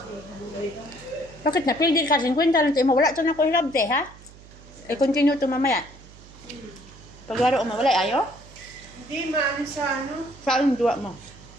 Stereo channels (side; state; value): right; noise; hum, 21 dB below the sound